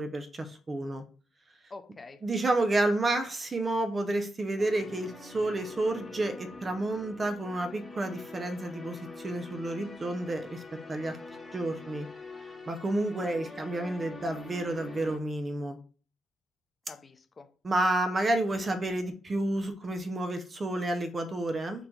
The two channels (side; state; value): both; normal; correlation 0.87